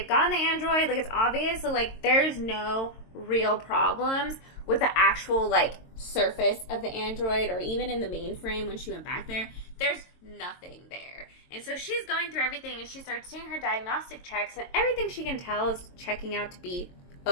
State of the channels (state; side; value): late; right; 22 ms